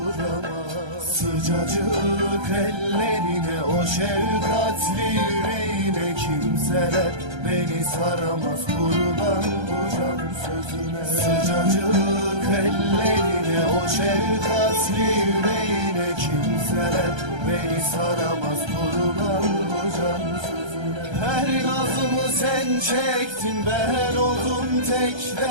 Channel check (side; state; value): left; late; 1.3 ms